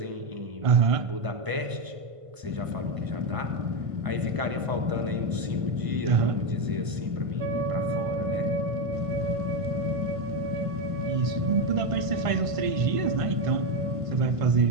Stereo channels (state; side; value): late; left; 1.5 ms